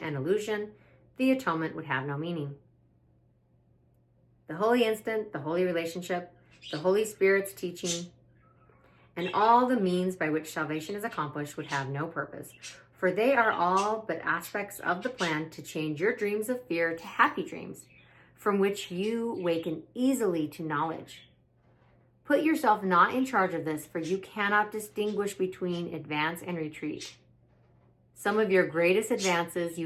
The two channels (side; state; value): both; identical; correlation 1.00